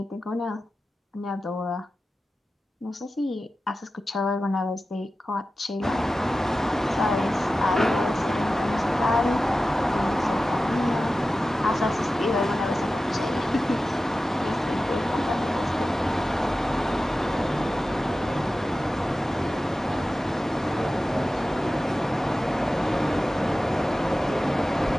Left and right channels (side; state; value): both; normal; correlation 0.94